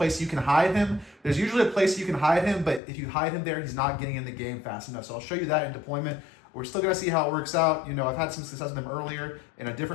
you can hide him. There's usually a place you can hide him, but if you hide him there, he's not getting in the game fast enough. So I'll show you that in deployment. We're still going to see how it works out. You know, I've had some success with him earlier in a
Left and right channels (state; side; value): drops out; right; at 2.8 s